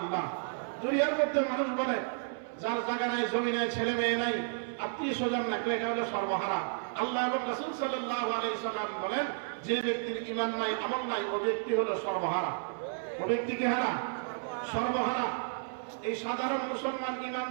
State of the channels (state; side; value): silent; left; 56 dB below the other